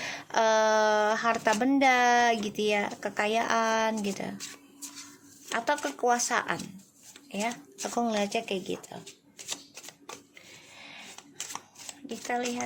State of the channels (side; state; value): both; identical; correlation 1.00